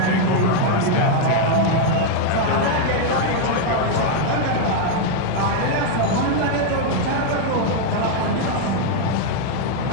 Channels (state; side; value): different; both; correlation 0.00